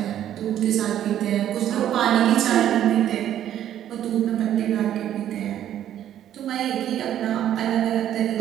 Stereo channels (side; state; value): left; quieter; 11.1 dB